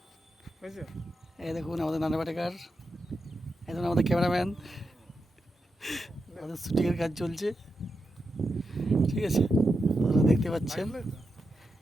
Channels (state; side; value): normal; both; correlation 0.87